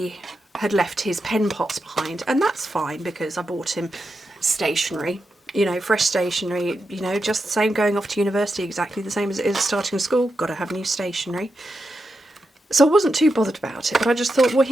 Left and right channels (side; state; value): both; normal; correlation 0.87